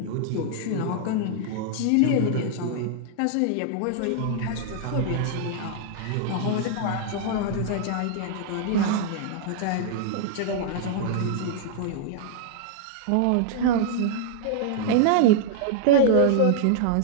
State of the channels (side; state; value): both; different; correlation -0.01